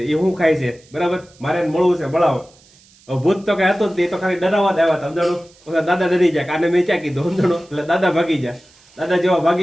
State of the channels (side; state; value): right; noise; hiss, 28 dB below the sound